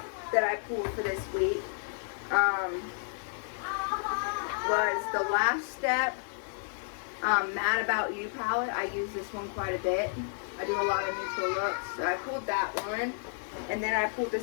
that I pulled for this week was the Last Step Mad About You palette. I use this one quite a bit. I do a lot of neutral looks, so I pulled that one. And then I pulled the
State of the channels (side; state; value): right; silent; 57 dB below the other